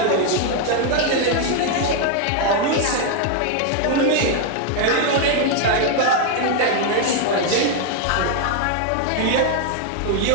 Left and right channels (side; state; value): both; different; correlation 0.00